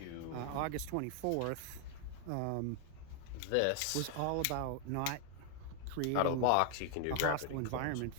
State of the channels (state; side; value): different; both; correlation 0.00